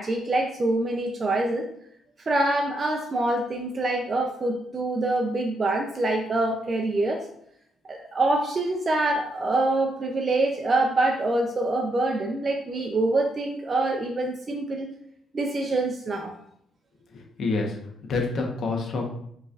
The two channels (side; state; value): both; normal; correlation 0.78